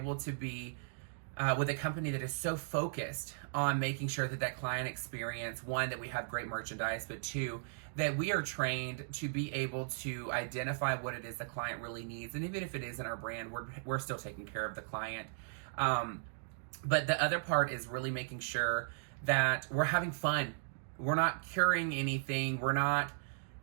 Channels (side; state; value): left; silent; digital silence